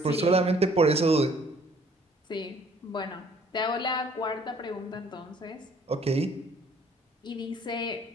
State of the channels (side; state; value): both; normal; correlation 0.58